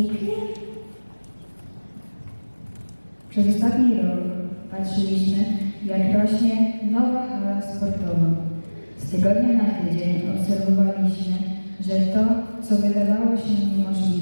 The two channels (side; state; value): both; inverted; correlation -1.00